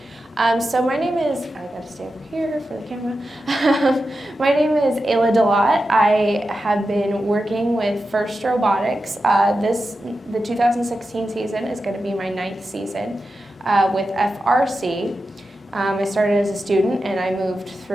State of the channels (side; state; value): both; normal; correlation 0.91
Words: So my name is, I got to stay over here for the camera. My name is Ayla Delott. I have been working with First Robotics. The 2016 season is going to be my 9th season with FRC. I started as a student and I moved